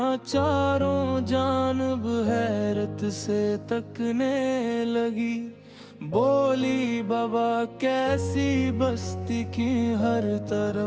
چاروں جانب حیرت سے تکنے لگی بولی بابا کیسی بستی کی ہر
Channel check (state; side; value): identical; both; correlation 1.00